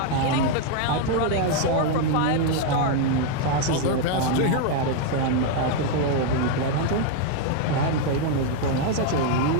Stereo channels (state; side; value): different; both; correlation 0.00